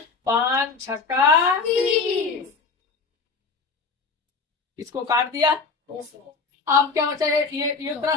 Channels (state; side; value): quieter; right; 4.6 dB